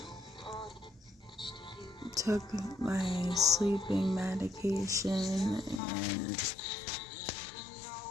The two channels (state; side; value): drops out; right; at 5.8 s